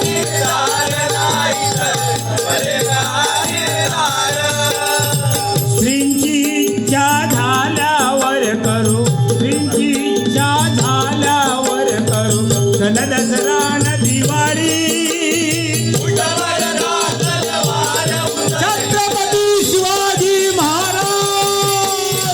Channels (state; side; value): identical; both; correlation 1.00